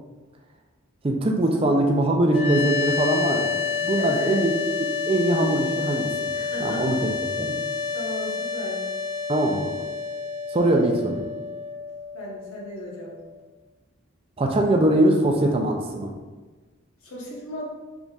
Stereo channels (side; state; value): both; normal; correlation 0.45